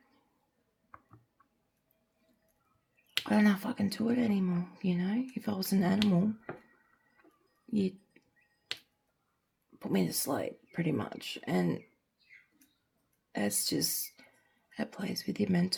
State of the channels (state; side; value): identical; both; correlation 1.00